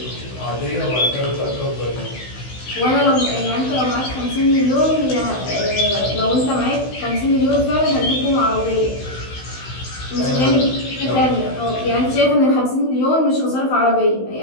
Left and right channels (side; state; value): right; late; 16 ms